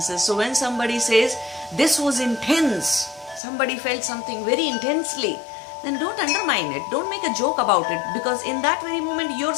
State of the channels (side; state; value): right; drops out; at 3.4 s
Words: So when somebody says, this was intense, somebody felt something very intensely, then don't undermine it. Don't make a joke about it, because in that very moment your